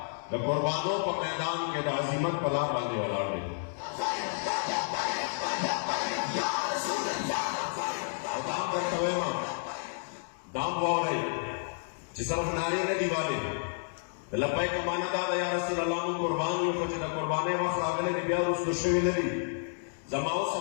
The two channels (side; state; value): right; silent; digital silence